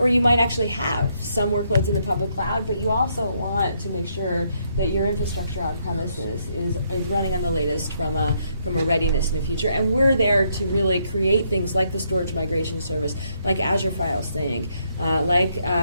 you might actually have some workloads in the public cloud, but you also want to make sure that your infrastructure on premises is running on the latest from a readiness in the future. And we're there to really create things like the storage migration service, like Azure File Sync, like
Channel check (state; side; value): inverted; both; correlation -0.74